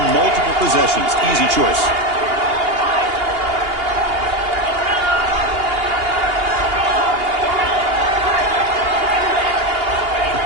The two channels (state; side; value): late; left; 2.8 ms